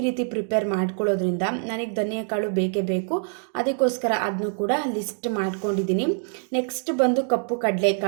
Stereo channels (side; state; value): left; silent; 62 dB below the other